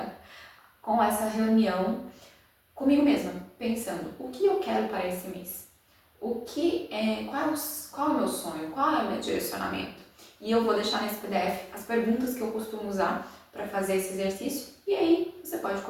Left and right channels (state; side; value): identical; both; correlation 1.00